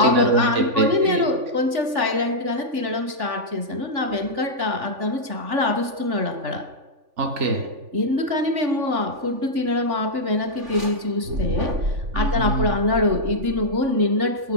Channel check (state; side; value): late; left; 3.5 ms